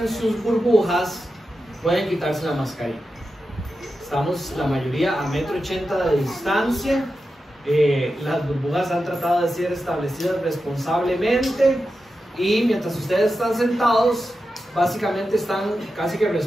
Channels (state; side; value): normal; both; correlation 0.90